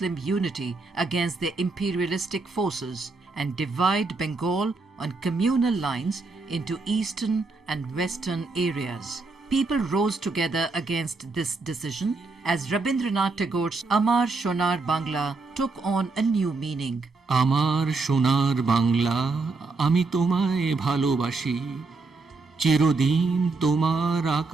unity against their imperialistic forces and divide Bengal on communal lines into eastern and western areas. People rose together against this decision as Rabindranath Tagore's Amar Shonar Bangla took on a new meaning. আমার সোনার বাংলা আমি তোমায় ভালোবাসি চিরদিন তোমার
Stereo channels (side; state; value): left; quieter; 3.8 dB